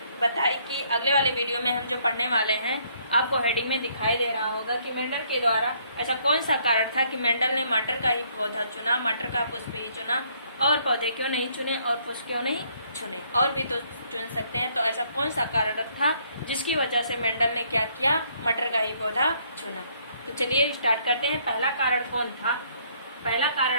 बताई कि अगले वाले वीडियो में हम जो पढ़ने वाले हैं, आपको हेडिंग में दिखाई दे रहा होगा कि मेंडल के द्वारा ऐसा कौन सा कारण था कि मेंडल ने मटर का ही पौधा चुना, मटर का पुष्प ही चुना, और पौधे क्यों नहीं चुने और पुष्प क्यों नहीं चुने, और भी तो चुन सकते हैं। तो ऐसा कौन सा कारण था जिसकी वजह से मेंडल ने क्या किया, मटर का ही पौधा चुना। तो चलिए स्टार्ट करते हैं। पहला कारण कौन था? पहला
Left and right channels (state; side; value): inverted; both; correlation -0.66